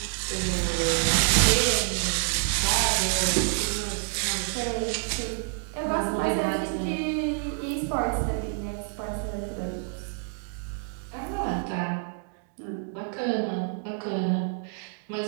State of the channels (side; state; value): left; silent; digital silence